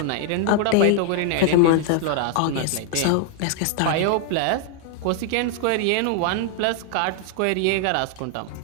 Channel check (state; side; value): different; both; correlation 0.00